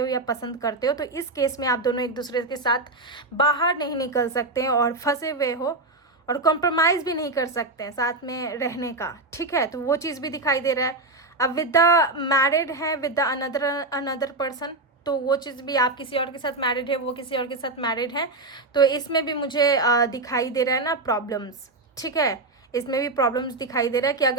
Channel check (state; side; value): quieter; left; 3.1 dB